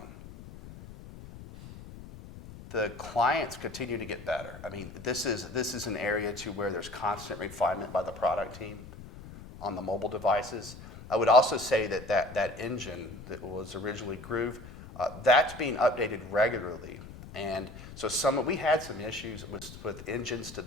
The clients continue to get better. I mean, this is an area to where there's constant refinement by the product team on the mobile devices. I would also say that engine that was originally Groove, that's being updated regularly. And so we had some issues with engine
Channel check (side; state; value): left; noise; rumble, 15 dB below the sound